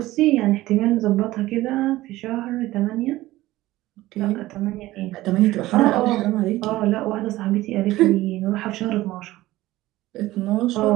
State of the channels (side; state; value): left; quieter; 16.9 dB